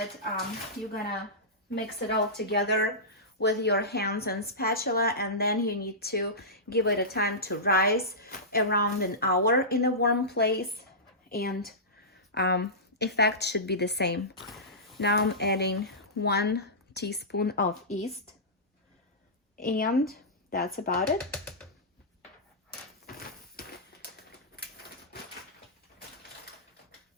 you're gonna mix it all together with your hands and spatula, and then you need to give it a time to rise around an hour in a warm place, and effect should be the same. Now I'm adding 1 teaspoon of yeast, and that's about it.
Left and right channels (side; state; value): both; normal; correlation -0.16